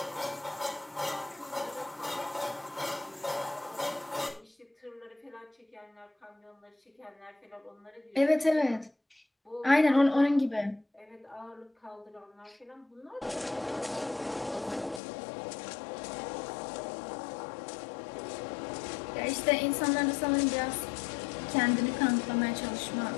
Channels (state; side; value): drops out; right; at 15.0 s